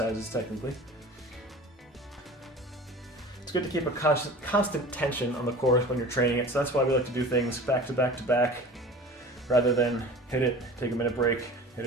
technically. It's good to keep a constant tension on the core when you're training it, so that's why we like to do things back to back to back, rather than hit it, take a minute break, hit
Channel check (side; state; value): both; normal; correlation 0.39